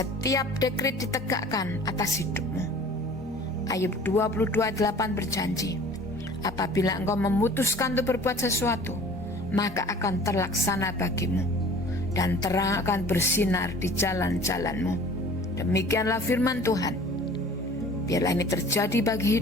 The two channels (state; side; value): normal; both; correlation 0.46